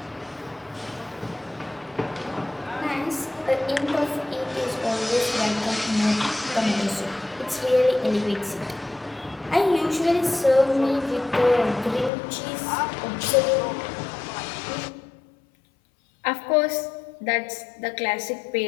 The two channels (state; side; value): drops out; right; at 12.1 s